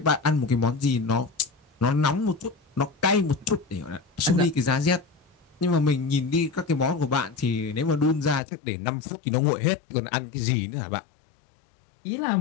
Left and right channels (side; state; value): right; drops out; at 8.4 s